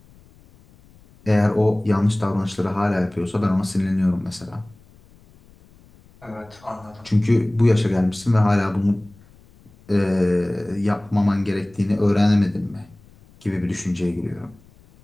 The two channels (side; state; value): left; noise; rumble, 27 dB below the sound